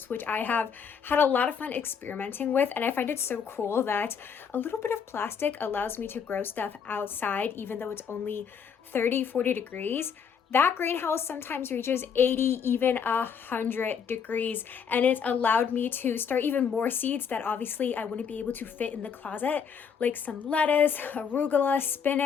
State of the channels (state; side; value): quieter; right; 6.8 dB